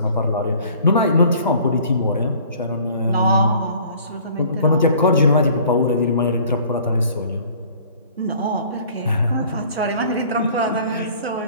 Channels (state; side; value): inverted; both; correlation -0.52